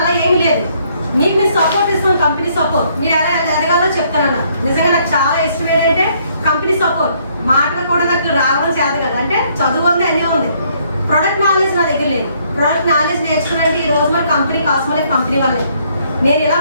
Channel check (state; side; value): inverted; both; correlation -0.67